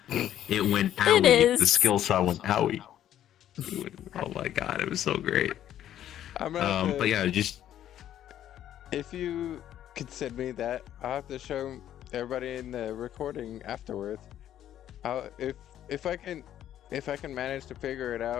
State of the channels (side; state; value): right; quieter; 11.3 dB